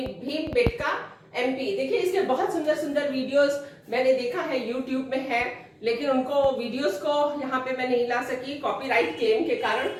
एमपी। देखिए इसके बहुत सुंदर सुंदर वीडियोस मैंने देखा है, यूट्यूब में है, लेकिन उनको वीडियोस को यहाँ पे मैं नहीं ला सकी कॉपीराइट क्लेम के कारण।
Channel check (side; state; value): both; identical; correlation 1.00